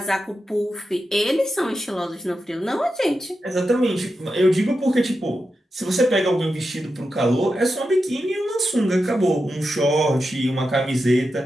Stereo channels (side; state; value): both; normal; correlation 0.89